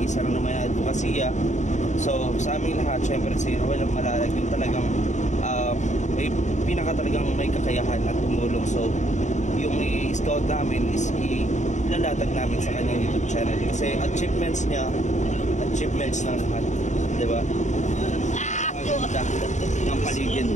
isa lang naman na advokasya. So sa aming lahat syempre si Roel Malalag yung talagang may talagang may kakayahan at tumulong. So yung i-scout namin is ilalatag namin sa kanyang YouTube channel kasi achievements niya, achievements ng lahat, di ba? Ganda ng paligid.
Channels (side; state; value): right; late; 0.34 ms